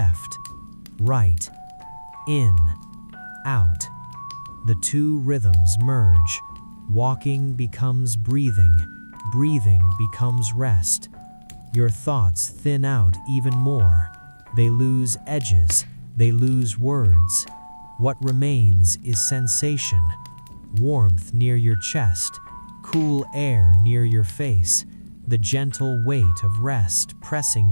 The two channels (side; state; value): both; inverted; correlation -1.00